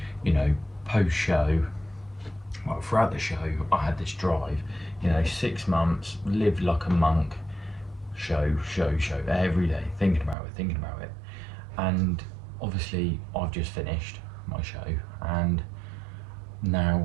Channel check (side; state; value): left; drops out; at 10.4 s